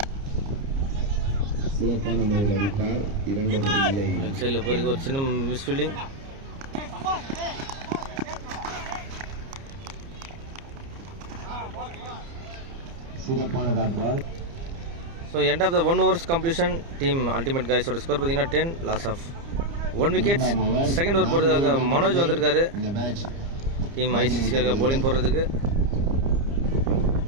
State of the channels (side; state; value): left; late; 30 ms